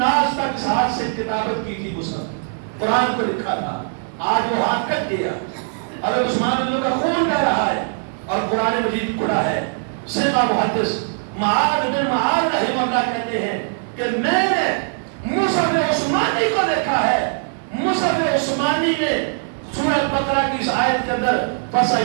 تک اس ہاتھ سے کتابت کی تھی، مصحف قرآن کو لکھا تھا، آج وہ ہاتھ کٹ گیا، حضرت عثمان رضی اللہ عنہ کا خون بہ رہا ہے اور قرآن مجید کھڑا ہے۔ سیدہ محدث معاذ بن معاذ رحمہ اللہ کہتے ہیں کہ میں نے مصحف عثمانی کو دیکھا ہے، مصحف عثمانی میں سورہ بقرہ کی اس آیت کے اندر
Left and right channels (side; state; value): left; silent; 65 dB below the other